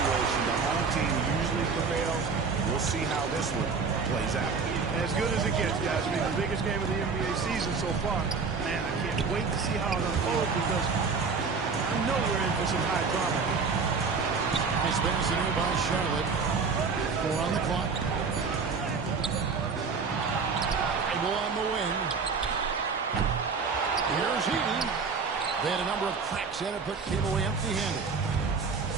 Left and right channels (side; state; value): left; quieter; 5.0 dB